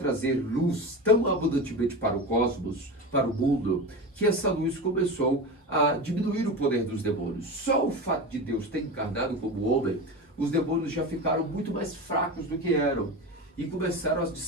luz tão abundantemente para o cosmos, para o mundo, que essa luz começou a diminuir o poder dos demônios. Só o fato de Deus ter encarnado como homem, os demônios já ficaram muito mais fracos do que eram e começaram, de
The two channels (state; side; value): normal; both; correlation 0.25